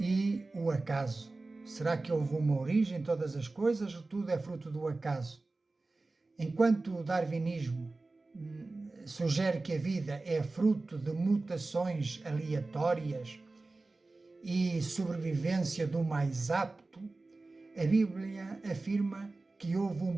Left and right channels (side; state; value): left; quieter; 3.3 dB